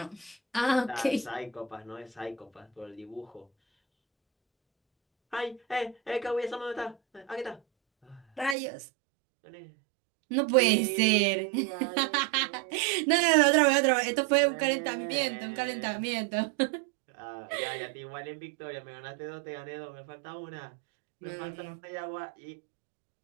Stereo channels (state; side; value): drops out; left; at 8.6 s